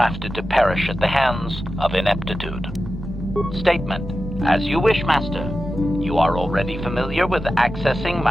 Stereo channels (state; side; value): normal; both; correlation 0.92